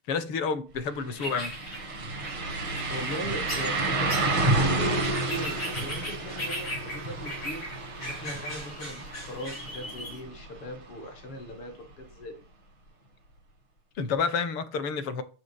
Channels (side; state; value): right; late; 6.6 ms